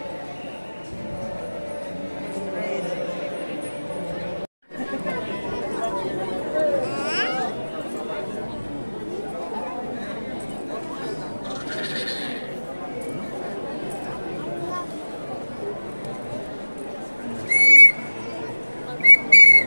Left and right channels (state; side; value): inverted; both; correlation -1.00